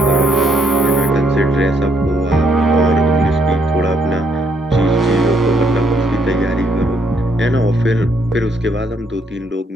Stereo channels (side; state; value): both; normal; correlation 0.72